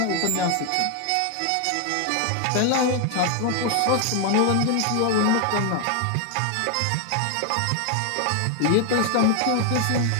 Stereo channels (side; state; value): both; different; correlation 0.00